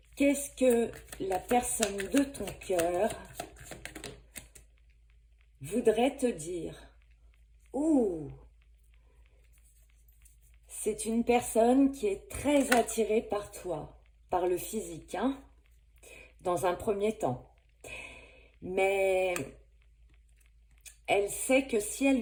Qu'est-ce que la personne de ton cœur voudrait te dire? Ouh, c'est une personne qui est très attirée par toi, par le physique, hein, dans un premier temps. Mais elle sait que si elle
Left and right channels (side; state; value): both; identical; correlation 1.00